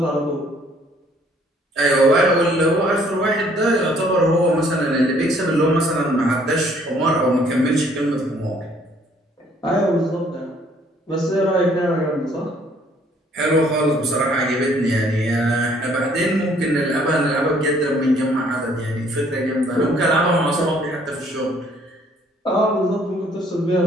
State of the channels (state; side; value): normal; both; correlation 0.61